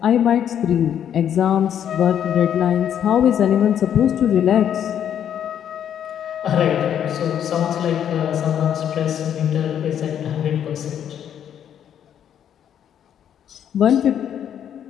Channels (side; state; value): right; quieter; 9.4 dB